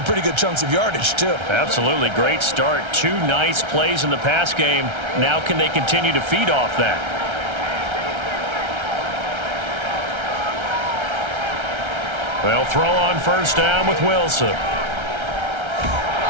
pretty good chunks of yardage, too. Absolutely. Great start. 2 nice plays in the pass game. Now can they continue to feed off that? They'll throw on first down with Wilson.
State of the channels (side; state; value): left; late; 1.3 ms